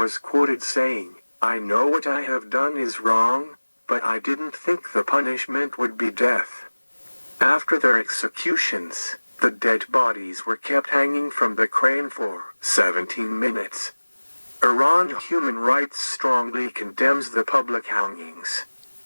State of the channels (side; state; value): both; inverted; correlation -1.00